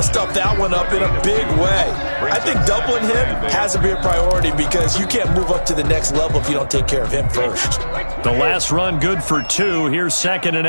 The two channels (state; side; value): inverted; both; correlation -1.00